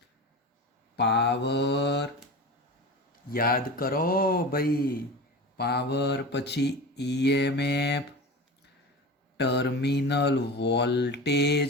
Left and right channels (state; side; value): normal; both; correlation 0.30